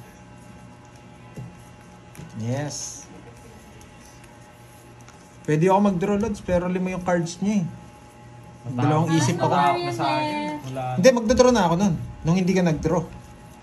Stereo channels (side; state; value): both; identical; correlation 1.00